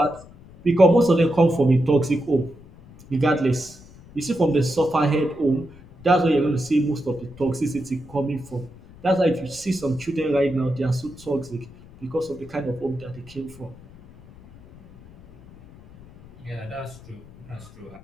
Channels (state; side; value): noise; left; rumble, 21 dB below the sound